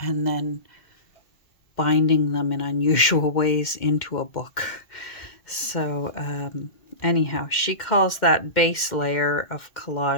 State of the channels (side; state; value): right; late; 2.1 ms